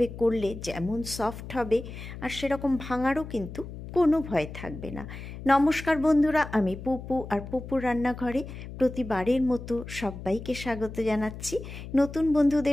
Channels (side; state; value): left; noise; hum, 11 dB below the sound